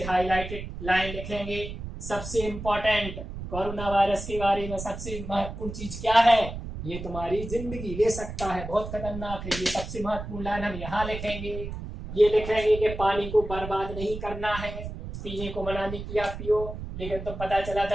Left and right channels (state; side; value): noise; right; rumble, 8 dB below the sound